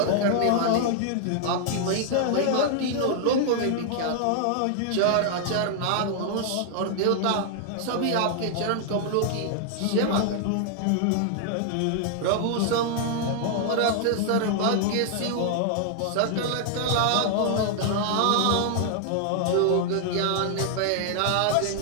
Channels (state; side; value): different; both; correlation 0.00